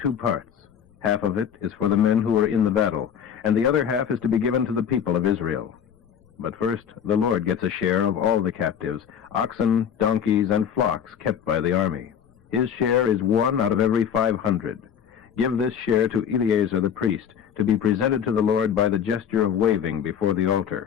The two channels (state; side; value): quieter; right; 8.2 dB